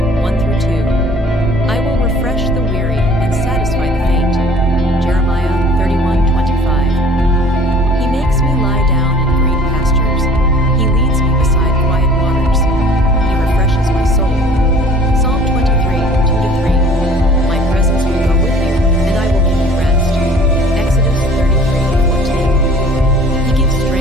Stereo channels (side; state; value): both; normal; correlation 0.51